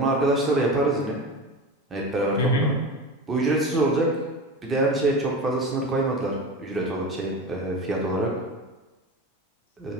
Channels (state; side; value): normal; both; correlation 0.28